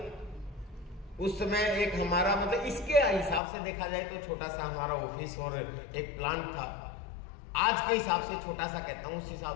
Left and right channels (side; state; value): right; drops out; at 3.4 s